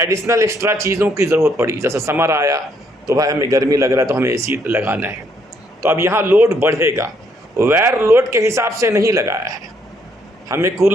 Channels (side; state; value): both; normal; correlation 0.70